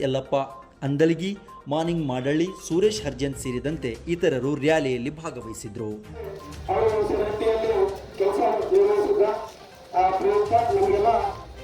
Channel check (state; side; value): identical; both; correlation 1.00